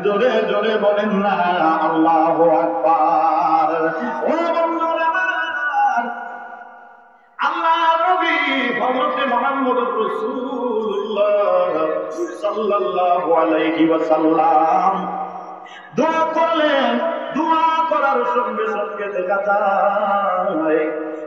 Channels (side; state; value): both; identical; correlation 1.00